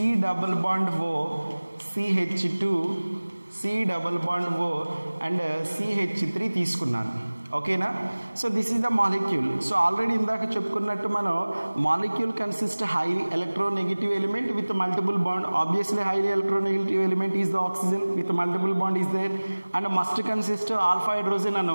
double bond O, CH2 C double bond O and CH3 తీసుకున్నాను. ఓకేనా. So this is the molecule. So already ఇందాక చెప్పుకున్నట్టు మనం molecule consist highly electronegative element with multiple bond. Obviously highly electronegative element is the oxygen with multiple bond is there and must consist alpha hydrogen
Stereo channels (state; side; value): inverted; both; correlation -1.00